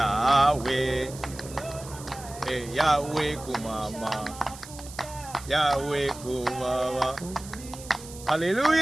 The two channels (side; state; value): right; noise; hiss, 16 dB below the sound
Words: Yahweh kumama, Yahweh kumama.